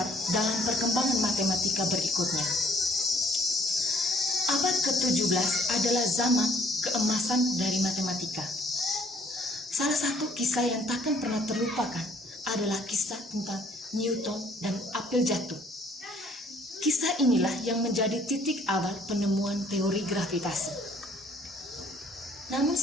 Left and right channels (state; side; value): normal; both; correlation 0.60